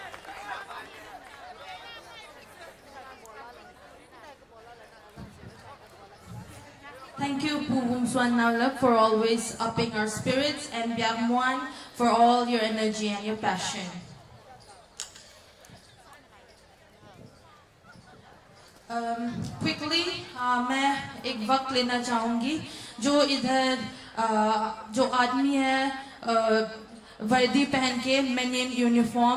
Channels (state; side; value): identical; both; correlation 1.00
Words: Thank you, Puvum Swan Navlak, for always upping our spirits, and Byagmuan for all your energy and your passion. Quickly, मैं एक वक्त लेना चाहूँगी जो इधर जो आदमी है वर्दी पहन के मैनियन